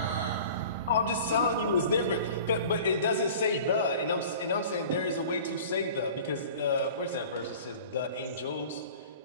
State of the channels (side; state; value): both; inverted; correlation -0.43